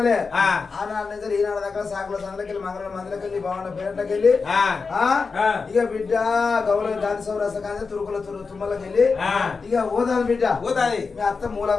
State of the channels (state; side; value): quieter; right; 4.7 dB